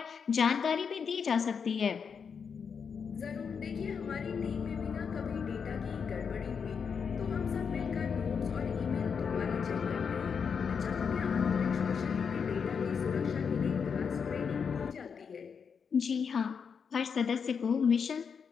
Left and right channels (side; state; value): right; quieter; 6.3 dB